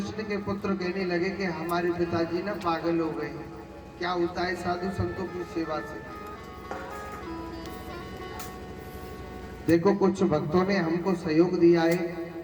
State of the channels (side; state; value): both; identical; correlation 1.00